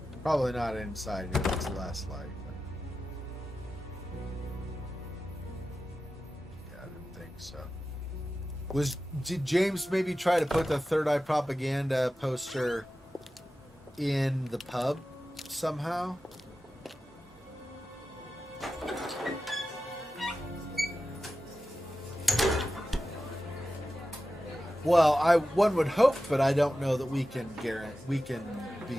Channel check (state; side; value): normal; both; correlation 0.93